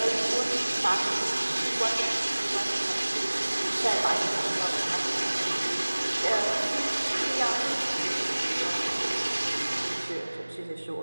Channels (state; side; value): inverted; both; correlation -1.00